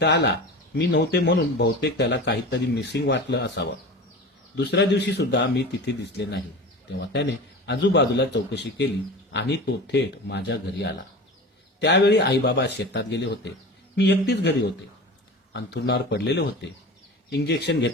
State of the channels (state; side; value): normal; both; correlation 0.33